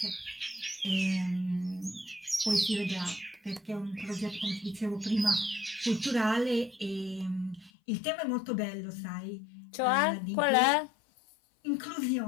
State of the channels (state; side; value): drops out; right; at 7.7 s